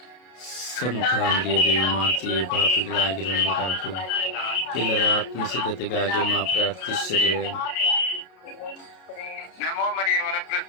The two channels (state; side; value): late; right; 32 ms